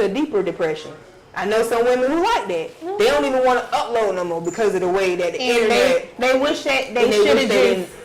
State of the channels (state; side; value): identical; both; correlation 1.00